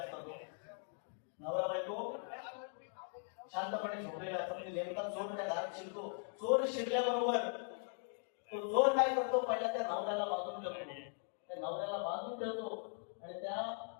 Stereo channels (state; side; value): silent; right; 51 dB below the other